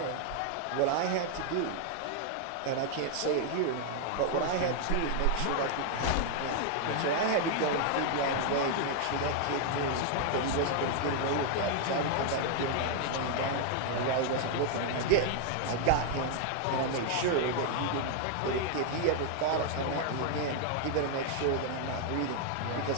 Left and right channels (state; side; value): different; both; correlation 0.00